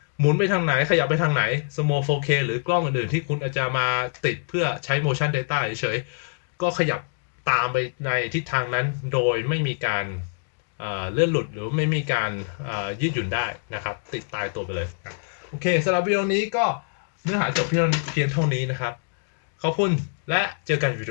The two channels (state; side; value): silent; right; digital silence